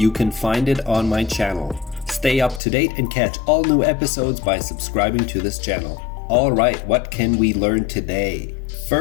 can find it on my channel. Stay up to date and catch all new episodes by subscribing to this channel. Alright, what can we learn today?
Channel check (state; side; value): drops out; right; at 2.6 s